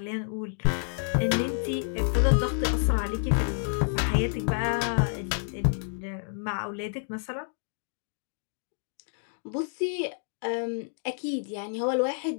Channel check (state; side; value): silent; right; digital silence